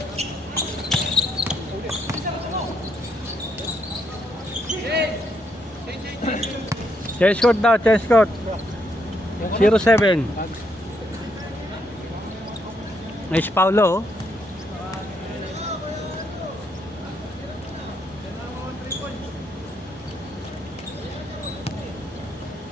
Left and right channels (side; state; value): both; normal; correlation 0.75